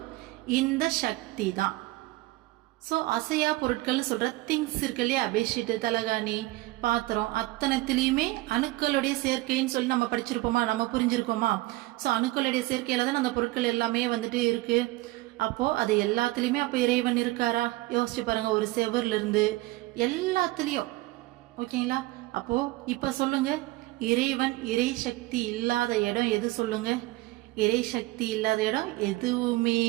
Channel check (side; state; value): left; quieter; 19.6 dB